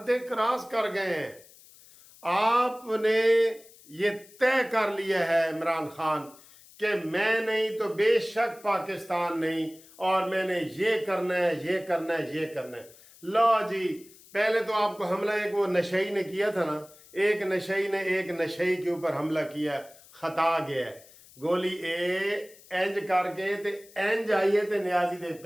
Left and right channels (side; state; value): left; noise; hiss, 23 dB below the sound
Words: क्रॉस कर गए हैं। आपने ये तय कर लिया है इमरान खान कि मैं नहीं तो बेशक पाकिस्तान नहीं, और मैंने ये करना है, ये करना है, ये करना है। लो जी, पहले तो आपको हमला एक वो नशई ने किया था ना, एक नशई ने एक नशई के ऊपर हमला किया, खता गया है। गोली इंज करके ते इंज आई है ते नियाजी दे